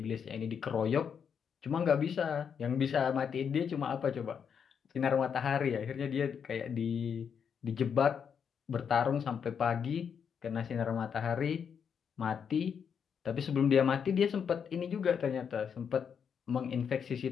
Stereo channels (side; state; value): right; quieter; 7.2 dB